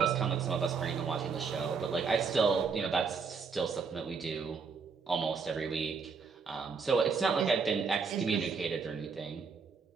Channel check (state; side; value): quieter; left; 5.4 dB